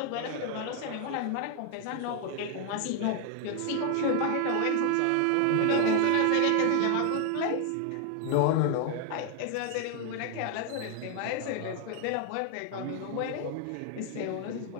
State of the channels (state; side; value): different; both; correlation 0.00